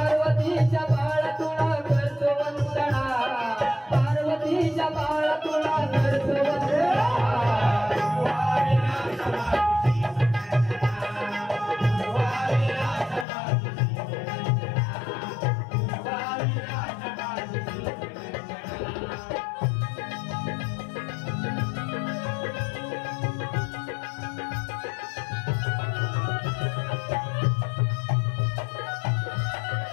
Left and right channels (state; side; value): drops out; right; at 13.2 s